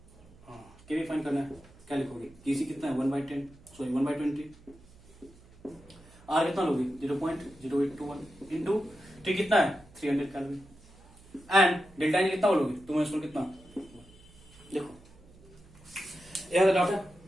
Kp find करना है, क्या लिखोगे केसी कितना है 1/10, सॉरी 1/20, आर कितना लोगे 0.0821 इंटू टी कितना है 300 कैलोरी एंड डेल्टा एन कितना बोलोगे तुम कितना। देखो यह डाउट है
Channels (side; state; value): right; noise; hum, 24 dB below the sound